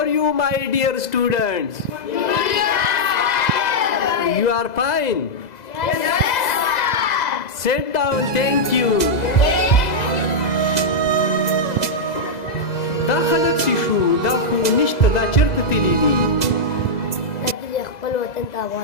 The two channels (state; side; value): late; right; 2.0 ms